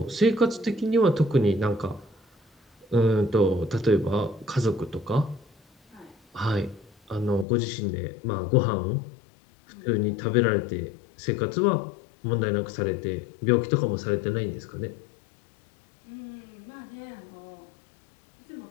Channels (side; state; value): right; drops out; at 7.5 s